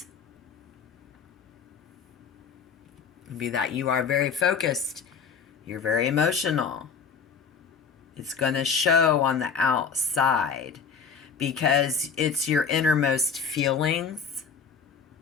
would be that you are very focused. You're very emotional. It's going to show on the outside because it's your innermost feelings.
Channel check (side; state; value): right; quieter; 6.1 dB